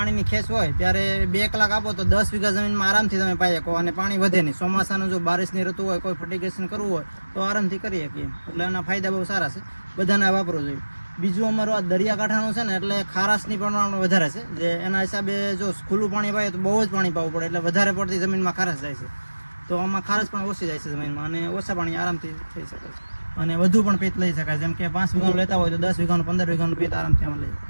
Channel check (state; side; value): inverted; both; correlation -1.00